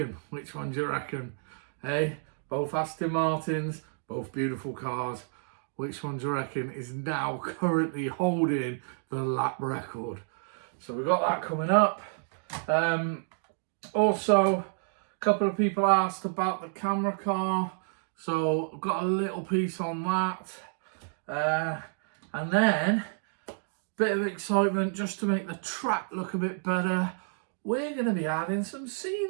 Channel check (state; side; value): silent; left; digital silence